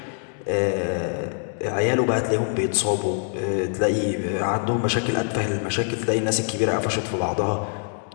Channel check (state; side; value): silent; right; 57 dB below the other